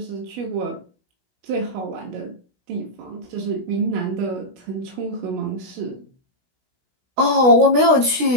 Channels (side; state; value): left; late; 16 ms